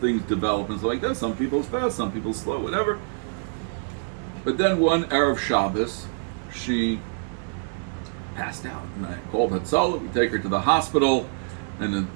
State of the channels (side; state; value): left; silent; digital silence